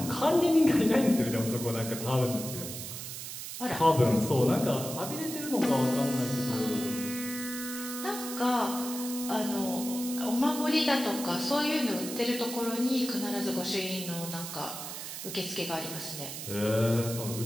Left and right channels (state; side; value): noise; right; hiss, 8 dB below the sound